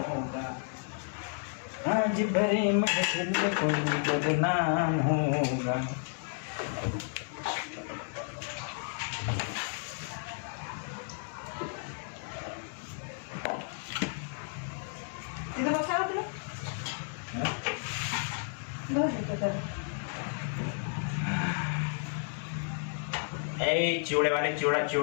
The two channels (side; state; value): right; silent; 56 dB below the other